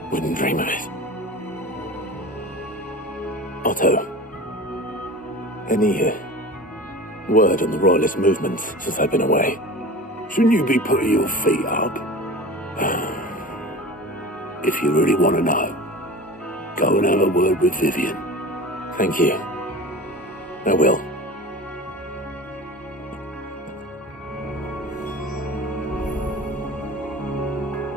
Wouldn't dream of it. Otto, any word on the Royalist movement since I've been away? Shouldn't you be putting your feet up? If you really want to know, go and have a word with Vivian. Thank you. I will.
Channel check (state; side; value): normal; both; correlation 0.35